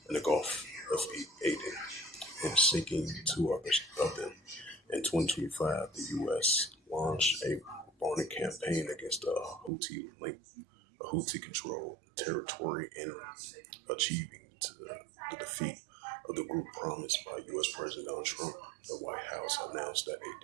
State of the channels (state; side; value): drops out; left; at 9.7 s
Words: in the Gulf of Aden and sinking two others of them. In 2025, the U.S. launched a bombing campaign against a Houthi-controlled territory in achieving the defeat of the group promised by U.S. President Donald Trump. The White House announced that a